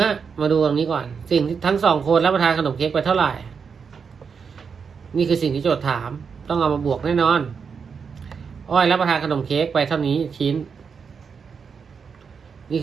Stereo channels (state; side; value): quieter; left; 6.0 dB